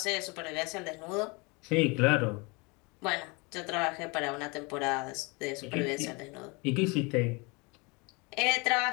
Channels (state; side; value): quieter; right; 28.6 dB